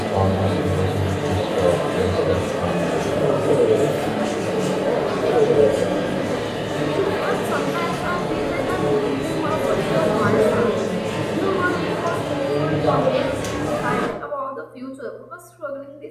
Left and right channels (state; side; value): identical; both; correlation 1.00